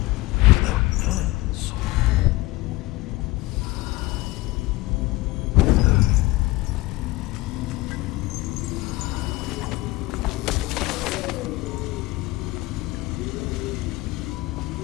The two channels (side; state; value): right; quieter; 19.8 dB